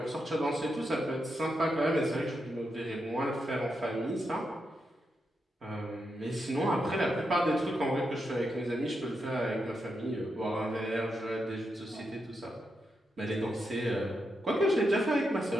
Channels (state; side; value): normal; both; correlation 0.85